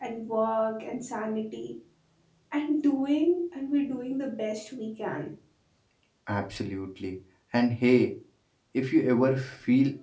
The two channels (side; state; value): both; identical; correlation 1.00